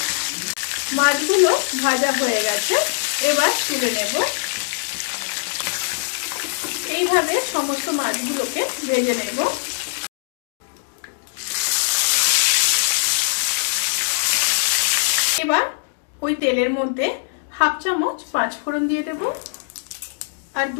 মাছগুলো ভাজা হয়ে গেছে। এবার তুলে নেব। এইভাবে সমস্ত মাছগুলোকে ভেজে নেব। এবার ওই তেলের মধ্যে 1/2 চামচ 5 ফোড়ন দিয়ে দেব আর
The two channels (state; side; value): silent; right; digital silence